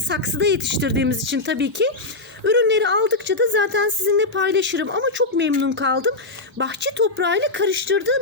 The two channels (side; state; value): right; quieter; 3.1 dB